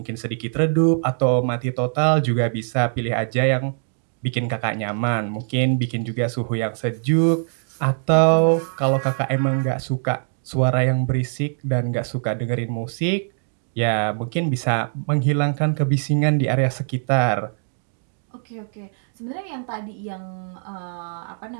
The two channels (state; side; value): silent; left; 64 dB below the other